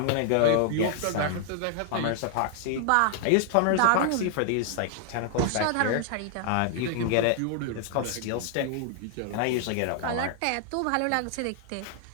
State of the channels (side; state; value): both; different; correlation 0.00